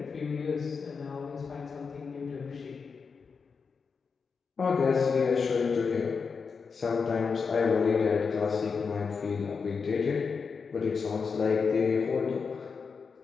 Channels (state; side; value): quieter; right; 5.4 dB